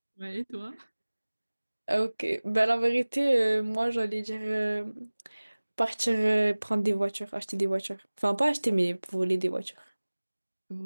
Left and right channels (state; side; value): inverted; both; correlation -1.00